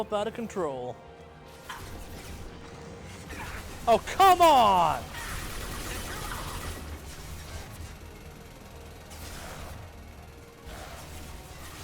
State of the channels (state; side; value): identical; both; correlation 1.00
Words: out of control. Oh, come on!